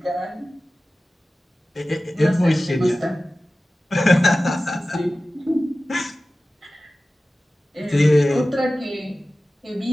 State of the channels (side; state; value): both; normal; correlation 0.96